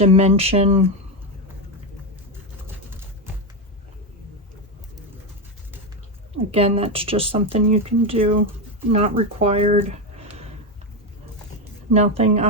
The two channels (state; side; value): normal; both; correlation 0.10